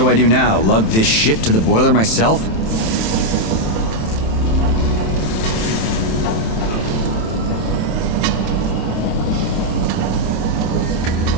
I do now? Lug this shit to the boiler myself?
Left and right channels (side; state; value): right; late; 27 ms